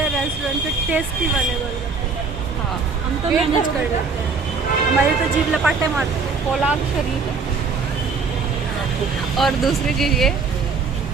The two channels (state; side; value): quieter; left; 4.7 dB